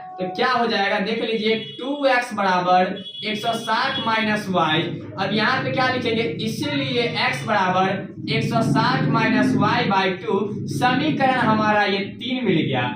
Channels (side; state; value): both; identical; correlation 1.00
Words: तो क्या हो जाएगा, देख लीजिए 2x बराबर 160 माइनस वाई। अब यहाँ पे क्या लिखेंगे, इसीलिए x बराबर 160 माइनस वाई बाई 2। समीकरण हमारा ये 3 मिल गया।